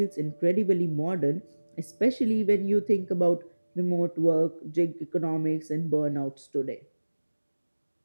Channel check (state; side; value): inverted; both; correlation -1.00